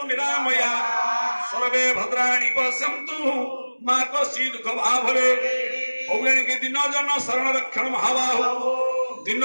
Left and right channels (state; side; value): inverted; both; correlation -1.00